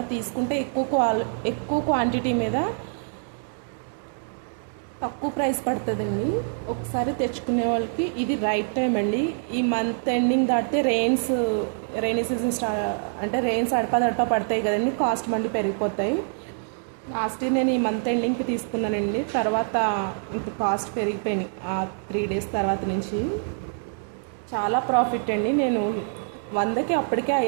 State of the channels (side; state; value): left; silent; digital silence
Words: తీసుకుంటే ఎక్కువ క్వాంటిటీ మీద తక్కువ ప్రైస్ పడుతుందండి. ఒకసారి తెచ్చుకునే వాళ్ళకి ఇది రైట్ టైం అండి. ఈ మంత్ ఎండింగ్ దాటితే రెయినీ సీజన్ అంటే రెయిన్స్ అడపా పడతాయి కదండి, కాస్ట్ మళ్ళీ పెరిగిపోతాయి. లాస్ట్ ఇయర్ నేను ఈ మంత్ ఎండింగ్కి తీసుకున్నానండి. తర్వాత ఇంత కాస్ట్ పెరిగిపోయినాయి ఆ 3 days తర్వాత నుంచి. చాలా ప్రాఫిట్ అండి. నేను 100కి అప్పటికే